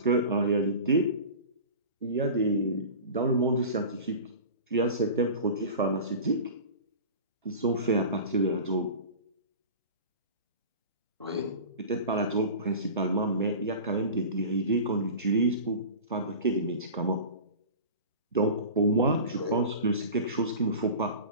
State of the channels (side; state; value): both; inverted; correlation -0.35